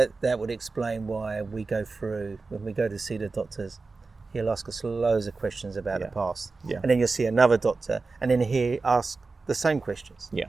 would explain why we go through, when we go to see the doctors, he'll ask us loads of questions about the past. And then you'll see another doctor, and then he'll ask the same questions.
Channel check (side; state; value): left; quieter; 4.0 dB